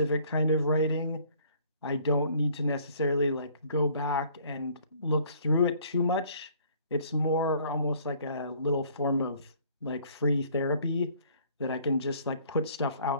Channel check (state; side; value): inverted; both; correlation -0.58